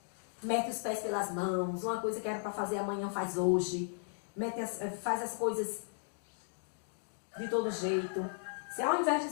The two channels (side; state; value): right; silent; digital silence